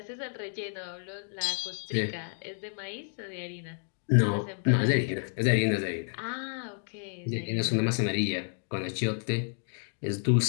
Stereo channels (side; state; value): right; silent; 58 dB below the other